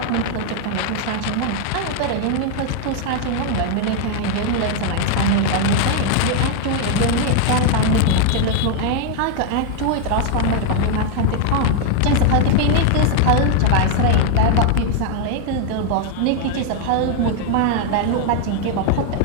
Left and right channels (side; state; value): both; different; correlation 0.00